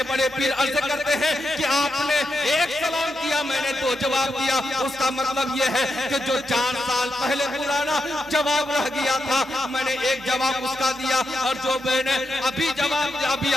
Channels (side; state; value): both; normal; correlation 0.85